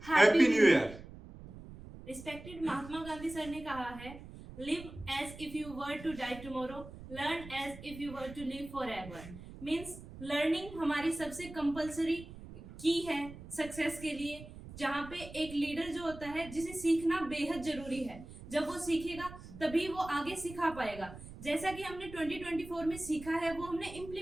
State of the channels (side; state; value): right; noise; rumble, 15 dB below the sound